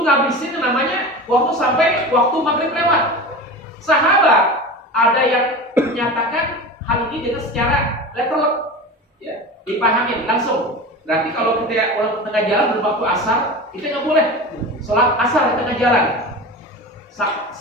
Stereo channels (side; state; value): both; normal; correlation 0.30